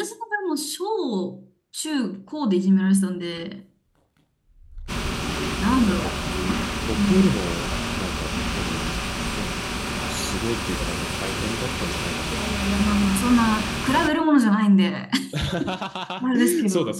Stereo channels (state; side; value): identical; both; correlation 1.00